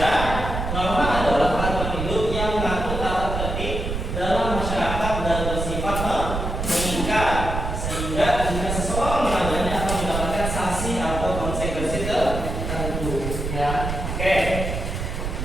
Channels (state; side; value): noise; right; rumble, 4 dB below the sound